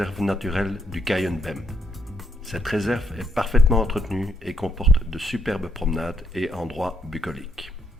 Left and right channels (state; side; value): normal; both; correlation 0.75